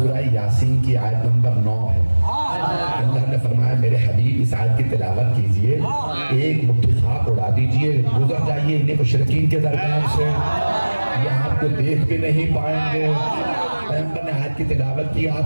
یاسین کی آیت نمبر 9 ہے. اللہ نے فرمایا میرے حبیب اس آیت کی تلاوت کیجئے, ایک مٹھی خاک اڑا دیجئے, گزر جائیے انہیں مشرکین کے درمیان سے, یہ آپ کو دیکھ بھی نہیں پائیں گے. پیغمبر نے آیت کی تلاوت کی.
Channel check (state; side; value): inverted; both; correlation -1.00